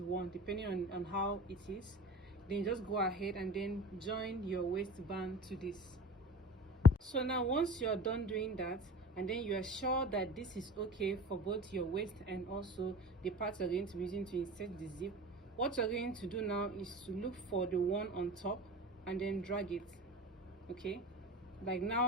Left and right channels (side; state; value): both; normal; correlation 0.35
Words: depending on how it is. Then just go ahead and then join your waistband to this. So now once you're done doing that, and then you are sure that this is okay for both your waist and also the parts you're going to be using to insert the zip, what you're going to do now is to look for the one on top and then drag it. Okay, like